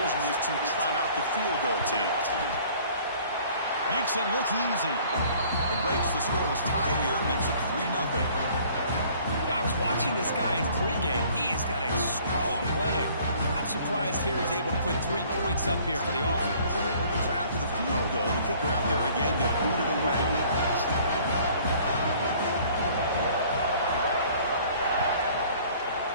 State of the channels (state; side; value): inverted; both; correlation -0.54